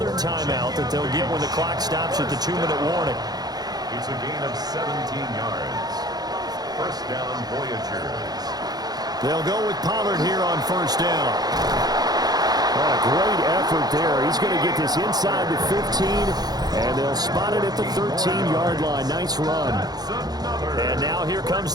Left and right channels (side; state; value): left; late; 0.19 ms